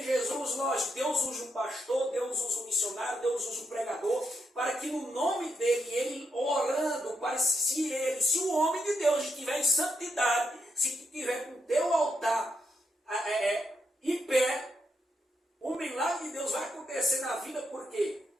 Jesus, lógico, Deus usa um pastor, Deus usa um missionário, Deus usa um pregador, para que no nome dele, ele orando, para se o homem de Deus estiver em santidade, se estiver com o teu altar em pé, o milagre de Deus vai acontecer na vida porque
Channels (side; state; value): both; normal; correlation 0.82